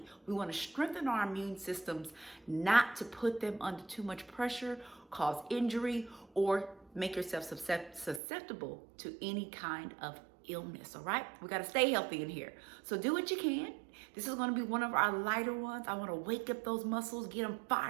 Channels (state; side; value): drops out; left; at 8.2 s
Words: We want to strengthen our immune systems, not to put them under too much pressure, cause injury, or make yourself susceptible to any kind of illness. All right, we got to stay healthy in here, so do what you can. This is going to be one of our lighter ones. I want to wake up those muscles, get them